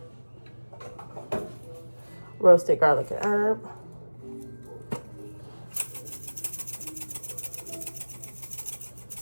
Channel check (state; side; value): inverted; both; correlation -1.00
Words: roasted garlic and herb,